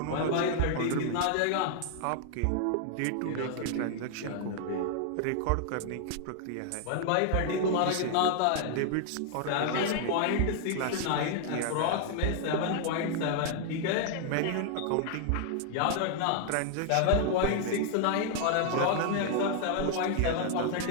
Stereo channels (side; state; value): both; different; correlation 0.00